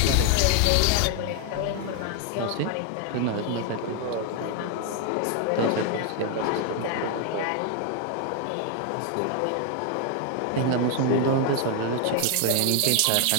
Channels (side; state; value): both; different; correlation 0.00